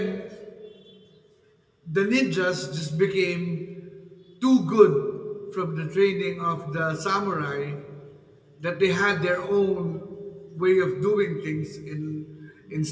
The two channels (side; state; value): both; identical; correlation 1.00